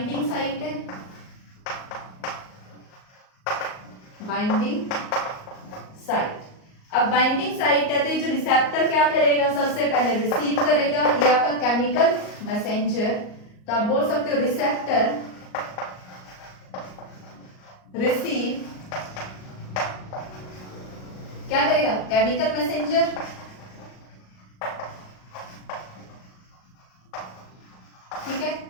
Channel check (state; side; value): late; right; 38 ms